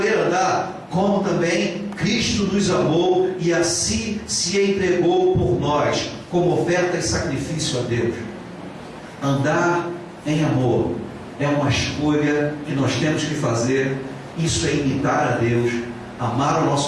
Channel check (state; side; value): identical; both; correlation 1.00